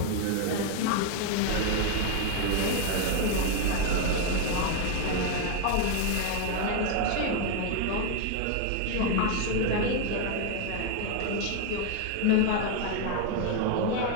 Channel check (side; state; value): both; different; correlation 0.01